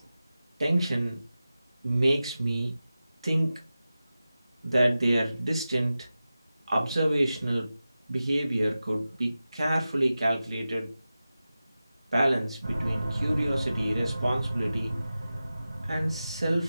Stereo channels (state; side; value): inverted; both; correlation -0.94